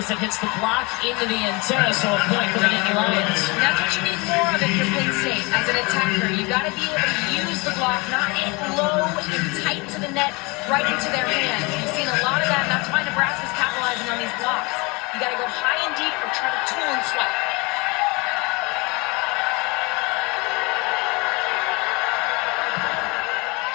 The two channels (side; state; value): right; quieter; 27.1 dB